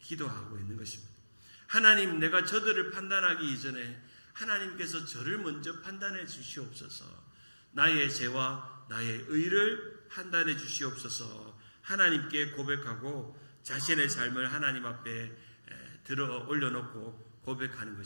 기도하고 있는 것입니다. 하나님, 내가 저들을 판단하기 이전에 하나님께서 저를 먼저 판단해 주시옵소서, 나의 죄와 나의 의를 판단해 주시옵소서 하나님께 고백하고 자신의 삶을 하나님 앞에 들어 올려놓고 고백하는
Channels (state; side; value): inverted; both; correlation -1.00